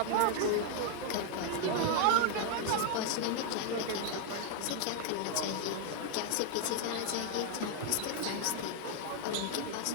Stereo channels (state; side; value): different; both; correlation 0.01